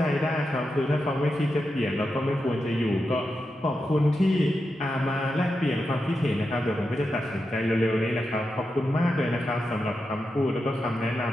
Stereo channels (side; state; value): both; normal; correlation 0.88